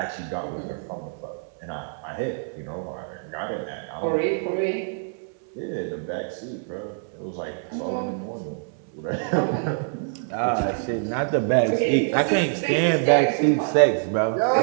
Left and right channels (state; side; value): silent; left; digital silence